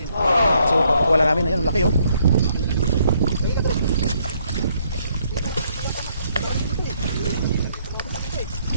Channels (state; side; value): inverted; both; correlation -0.70